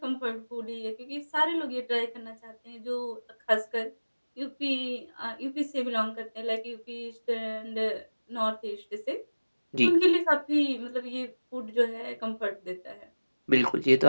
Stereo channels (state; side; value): inverted; both; correlation -1.00